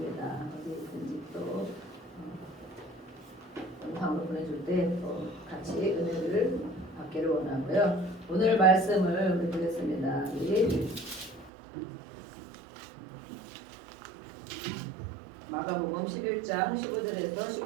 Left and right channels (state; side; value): drops out; left; at 11.5 s